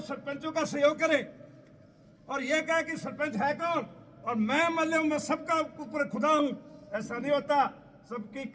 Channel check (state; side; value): identical; both; correlation 1.00